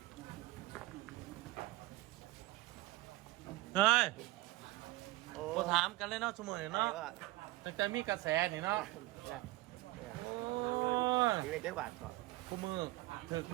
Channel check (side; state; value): left; quieter; 19.0 dB